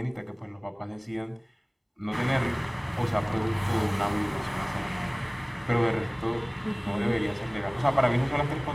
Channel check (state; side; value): identical; both; correlation 1.00